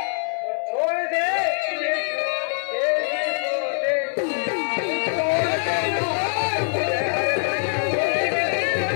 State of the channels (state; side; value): silent; right; 61 dB below the other